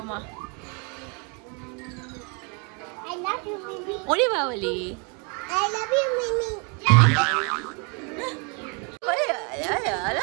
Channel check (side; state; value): left; quieter; 34.3 dB